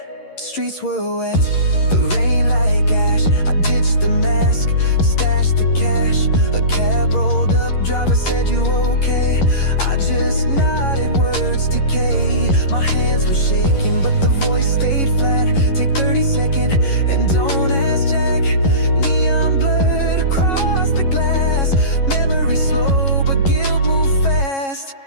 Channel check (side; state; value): right; late; 11 ms